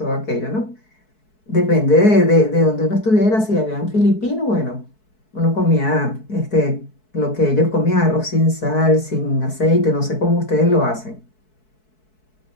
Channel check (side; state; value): right; late; 4.6 ms